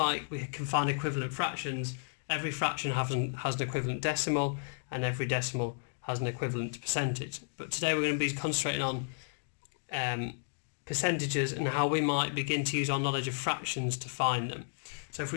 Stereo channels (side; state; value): right; silent; digital silence